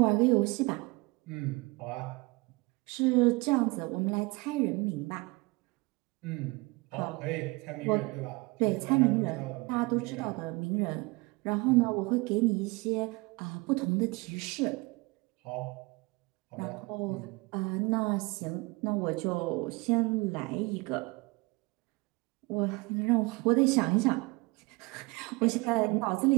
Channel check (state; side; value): quieter; left; 24.8 dB